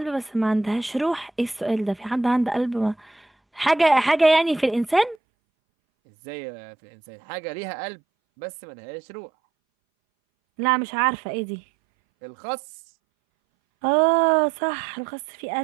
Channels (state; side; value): drops out; left; at 5.2 s